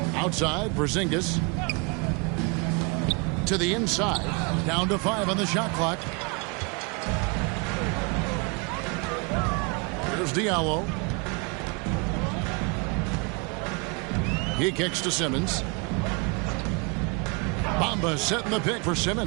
Outside, Porzingis. To the inside. Down to 5 on the shot clock. Here's Diallo. He kicks to Simmons. Bamba setting the pick for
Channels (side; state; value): left; quieter; 31.9 dB